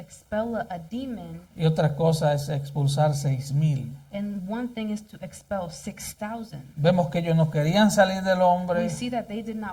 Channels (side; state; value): both; identical; correlation 1.00